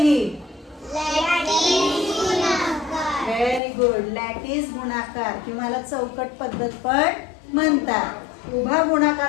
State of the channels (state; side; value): drops out; right; at 3.6 s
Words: Very good. लॅटिस गुणाकार किंवा चौकट पद्धत पण म्हणतात. उभा